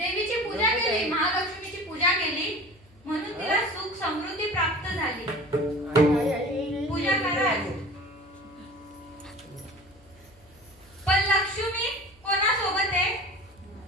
पूजा केली महालक्ष्मीची पूजा केली म्हणून तिला सुख समृद्धी प्राप्त झाली पूजा करा पण लक्ष्मी कोणासोबत आहे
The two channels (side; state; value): left; noise; hum, 28 dB below the sound